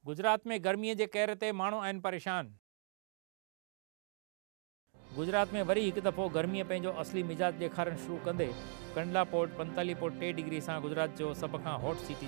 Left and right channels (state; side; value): silent; left; 52 dB below the other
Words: गुजरात में गर्मी के कहर ते माण्हू आहिनि परेशान। गुजरात में वरी एक दफ़ो गर्मी पंहिंजो असली मिजाज ॾेखारण शुरू कंदे कंडला पोर्ट 45.3 डिग्री से गुजरात जो सब खां हॉट सिटी